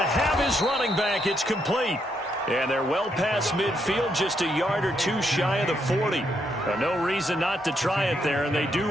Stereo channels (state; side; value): normal; both; correlation 0.77